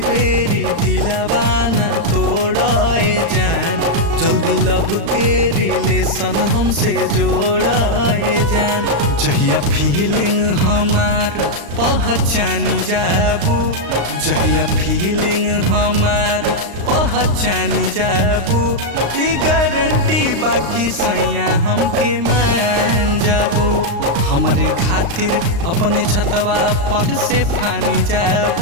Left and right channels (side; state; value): left; late; 35 ms